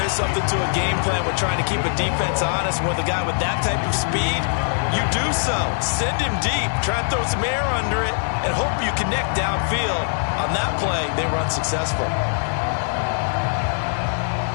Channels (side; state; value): right; silent; digital silence